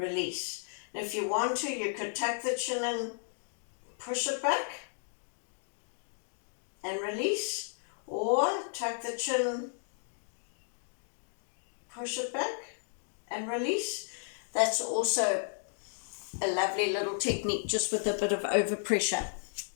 And if you want to, you could tuck the chin in, push it back and release, or tuck the chin, push it back and release. That's also a lovely little technique, just with a bit of overpressure.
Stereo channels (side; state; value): right; silent; digital silence